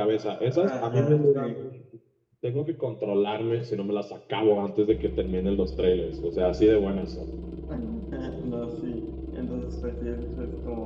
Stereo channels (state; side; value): identical; both; correlation 1.00